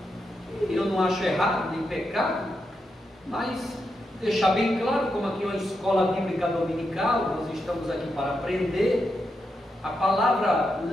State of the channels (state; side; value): normal; both; correlation 0.85